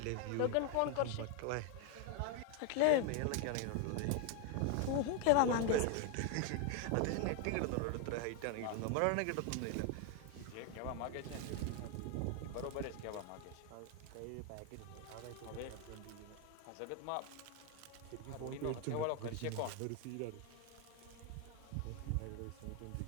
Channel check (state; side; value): different; both; correlation 0.01